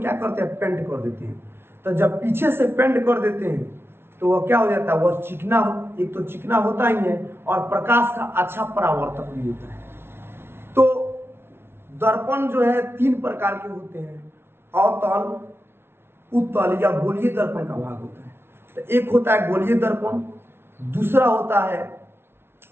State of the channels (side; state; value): left; late; 0.12 ms